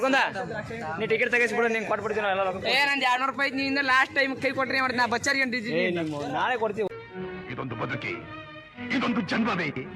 ನೀ ಟಿಕೆಟ್ ತೆಗಿಸ್ಬಿಡು, ನಿಂಗೆ ಕೊಟ್ಬಿಡ್ತೀನಿ ಎಲ್ಲ. ಏ ನಂದು 200 ರೂಪಾಯಿ ನಿಂದ ಲಾಸ್ಟ್ ಟೈಮ್ ಕೈ ಕೊಟ್ರಿ ಮಾಡಿ ನಾ ಬಚ್ಚಾರಿಗೆ ಅಂಟಿದ್ದೀನಿ. ನಾಳೆ ಕೊಡ್ತೀವಿ. ಇದೊಂದು ಬದುಕಿ, ಇದೊಂದು ಜನ್ಮವೇ,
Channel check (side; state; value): both; identical; correlation 1.00